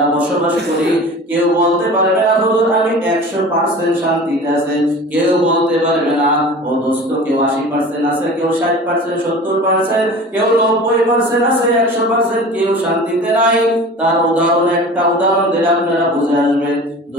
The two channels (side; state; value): both; normal; correlation 0.39